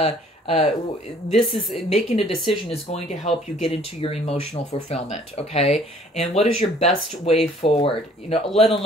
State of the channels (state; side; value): normal; both; correlation 0.57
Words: this is making a decision is going to help you get into your emotional fulfillment, okay? And what is your best way forward? You know, let